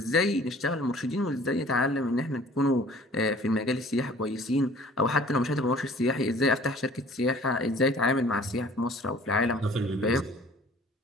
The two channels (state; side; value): normal; both; correlation 0.51